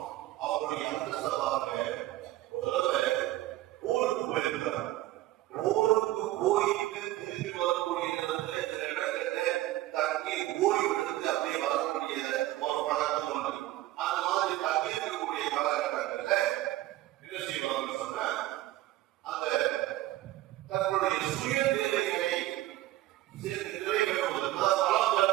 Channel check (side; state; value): left; quieter; 15.8 dB